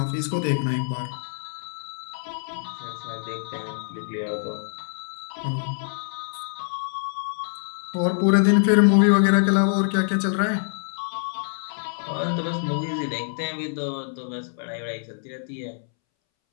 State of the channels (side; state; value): right; silent; 61 dB below the other